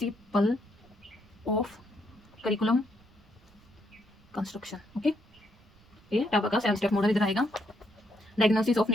of curriculum construction. Okay, ये टाबा का 7 स्टेप मॉडल इधर आएगा। डायग्नोसिस ऑफ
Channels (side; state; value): right; noise; rumble, 28 dB below the sound